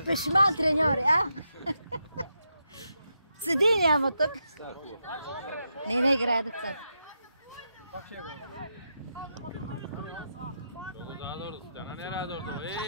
пешман треньори, а? Седи няма тук. Не играе децата. Пак ще е гол. Много задорно, стана не радорно.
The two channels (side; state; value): both; inverted; correlation -0.84